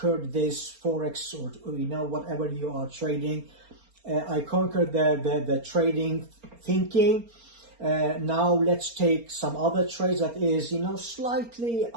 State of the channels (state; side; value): late; left; 4.3 ms